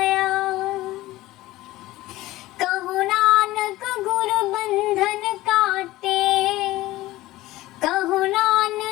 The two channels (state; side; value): quieter; right; 17.4 dB